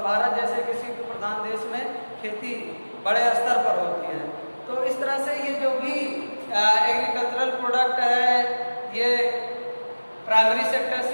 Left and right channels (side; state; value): both; inverted; correlation -1.00